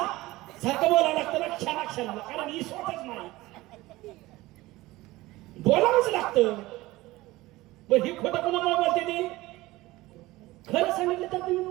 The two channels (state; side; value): quieter; left; 18.9 dB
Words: सारखं बोलावं लागतं ना क्षणाक्षणाला, कारण ही स्वतःच नाही बोलावंच लागतं. पण ही खोटं कुणामुळे बोलते ती? खरं सांगितलं तर तुम्ही